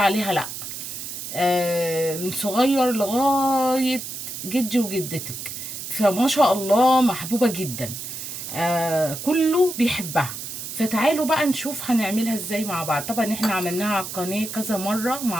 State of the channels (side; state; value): right; noise; hiss, 8 dB below the sound